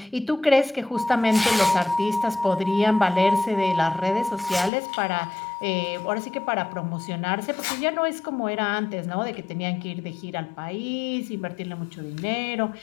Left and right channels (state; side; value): drops out; right; at 4.7 s